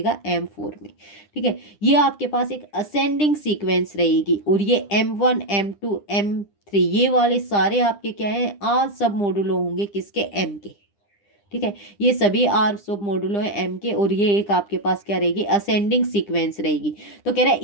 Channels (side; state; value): right; late; 9.9 ms